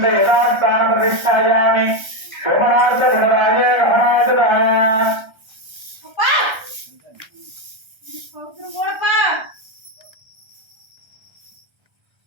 யதாஸ்தான பிரதிஷ்டாயாமி சோமநாத குணராஜ ரமணாசதான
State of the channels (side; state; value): left; late; 1.3 ms